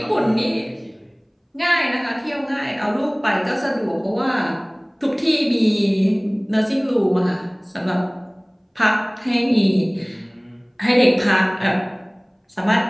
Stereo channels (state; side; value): identical; both; correlation 1.00